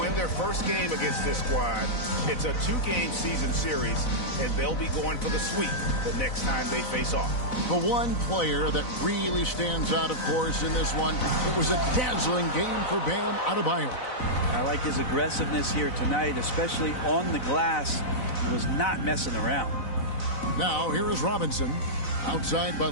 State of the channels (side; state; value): right; late; 4.0 ms